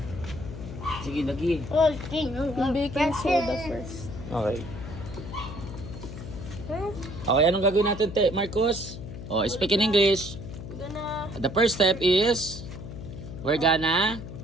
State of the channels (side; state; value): left; noise; hum, 10 dB below the sound